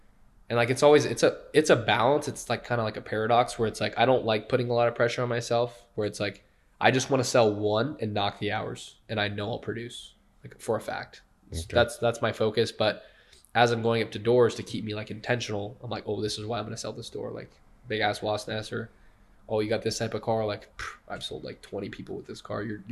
And like, it's a balance. It's like kind of like a paradox where it's like, I don't like putting a lot of pressure on myself where it's like, I just want to sell one and knock the hours and I know I'll produce like for a fact. Okay. That's my focus. But as I'm going up to doors to keep me like intentional, I'm like, oh, this is why I'm going to sell this door. Like big ass wasp nest or, oh, you got this type of car. Like I've sold like 20 people with this car.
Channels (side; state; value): both; identical; correlation 1.00